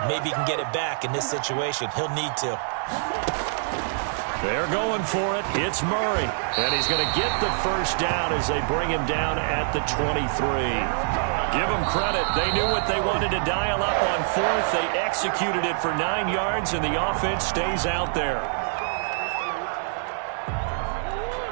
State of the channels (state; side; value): silent; left; digital silence